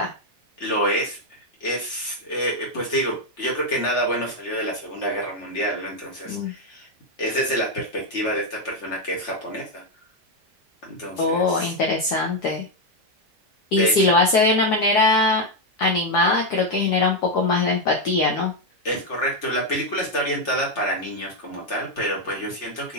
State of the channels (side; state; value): both; normal; correlation 0.03